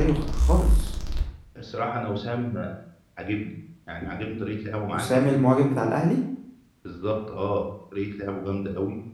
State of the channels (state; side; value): identical; both; correlation 1.00